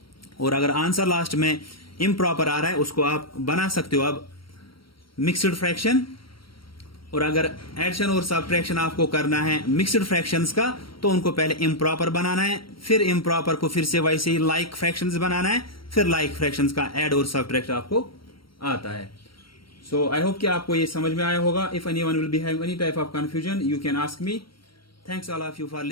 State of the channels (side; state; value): right; late; 0.74 ms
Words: और अगर आंसर लास्ट में इम्प्रॉपर आ रहा है उसको आप बना सकते हो अब मिक्सड फ्रैक्शन। और अगर एडिशन और सब्ट्रैक्शन आपको करना है मिक्सड फ्रैक्शंस का, तो उनको पहले इम्प्रॉपर बनाना है, फिर इम्प्रॉपर को फिर से वैसे ही लाइक फ्रैक्शंस बनाना है, फिर लाइक फ्रैक्शंस का ऐड और सब्ट्रैक्ट आपको आता है. सो आई होप कि आपको ये समझ में आया होगा. If anyone will be having any type of confusion, you can ask me. Thanks all of you for